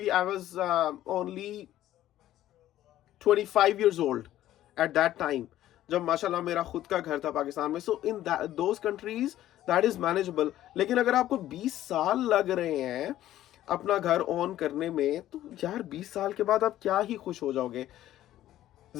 I was only 25 years old at that time, जब माशाल्लाह मेरा खुद का घर था पाकिस्तान में। So in those countries that is manageable। लेकिन अगर आपको 20 साल लग रहे हैं अपना घर ऑन करने में, तो यार 20 साल के बाद आप क्या ही खुश हो जाओगे।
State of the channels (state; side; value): quieter; right; 13.4 dB